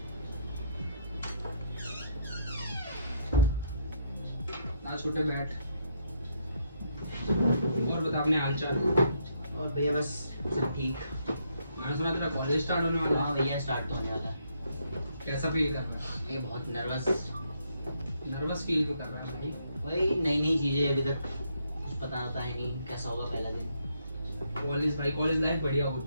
ना छोटे बैठ। और बता अपने हाल चाल। और भैया बस सब ठीक। मैंने सुना तेरा कॉलेज स्टार्ट होने वाला है। हाँ भैया स्टार्ट तो होने वाला है। कैसा फील कर रहा है? मैं बहुत नर्वस फील क्यों कर रहा है भाई? वही नई नई चीजें, अभी तक कुछ पता आता है नहीं कैसा होगा पहला दिन। कॉलेज लाइफ बढ़िया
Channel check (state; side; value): inverted; both; correlation -0.73